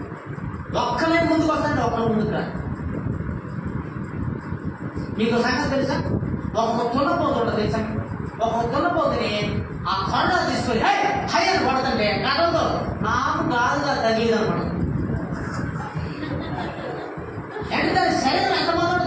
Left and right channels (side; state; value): both; identical; correlation 1.00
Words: ఒక్కలే ముందుకు వస్తాంటే ఒక్కరు ముందుకు రా. మీకు సంగతి తెలుసా? ఒక తున్నపోతుంట తెలుసా? ఒక తున్నపోతుని ఆ కొండ తీసుకొని హైర్ పడుతుంటే గతంతో నాకు గాలుగా తగిలిదనమాట. ఎంత దాని శరీరం ఎంత